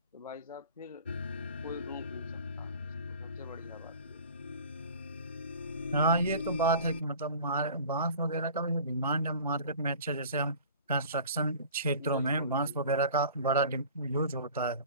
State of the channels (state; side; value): inverted; both; correlation -0.43